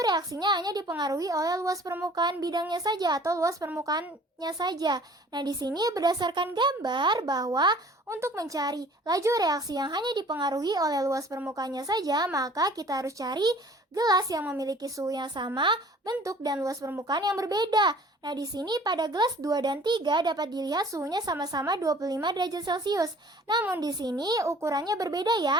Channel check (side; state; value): both; normal; correlation 0.50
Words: reaksinya hanya dipengaruhi oleh luas permukaan bidangnya saja atau luas permukaannya saja. Nah, di sini berdasarkan gambar bahwa untuk mencari laju reaksi yang hanya dipengaruhi oleh luas permukaannya saja, maka kita harus cari gelas yang memiliki suhu yang sama, bentuk dan luas permukaan yang berbeda. Nah, di sini pada gelas 2 dan 3 dapat dilihat suhunya sama-sama 25 derajat Celcius. Namun di sini ukurannya berbeda